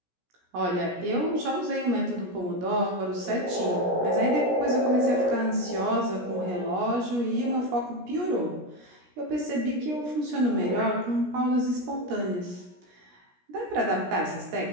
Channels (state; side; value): late; left; 17 ms